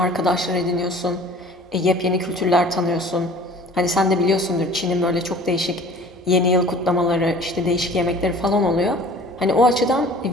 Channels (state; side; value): normal; both; correlation 0.47